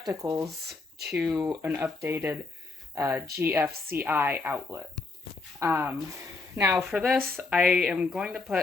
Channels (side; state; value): right; quieter; 3.8 dB